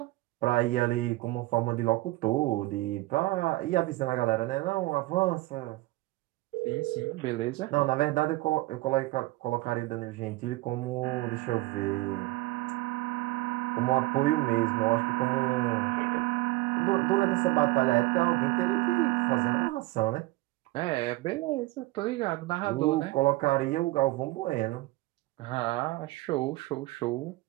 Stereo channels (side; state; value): left; quieter; 20.1 dB